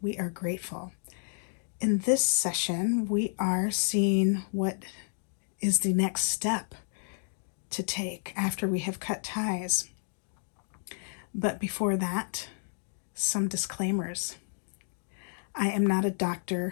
we are grateful. In this session, we are seeing what is the next step to take after we have cut ties. But before that, some disclaimers. I am not a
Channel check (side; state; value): right; silent; digital silence